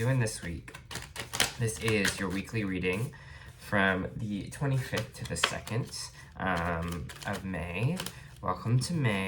this week? This is your weekly reading from the 25th to the 2nd of May. Welcome to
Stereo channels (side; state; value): both; identical; correlation 1.00